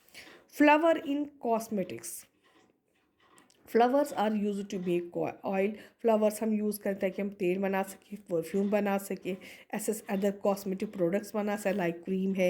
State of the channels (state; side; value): identical; both; correlation 1.00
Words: Flower in cosmetics, flowers are use to make oil. Flowers हम यूज़ करते हैं कि हम तेल बना सकें, परफ्यूम बना सकें, ऐसे अदर कॉस्मेटिक प्रोडक्ट्स बना सकें, लाइक क्रीम